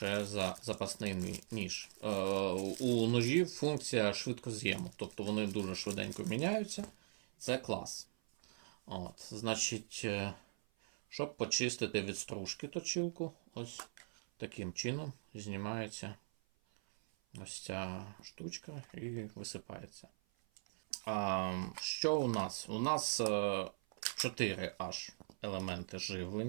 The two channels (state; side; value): silent; left; 50 dB below the other